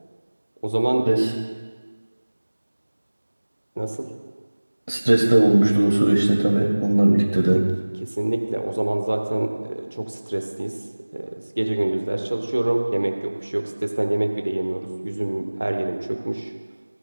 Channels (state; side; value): inverted; both; correlation -1.00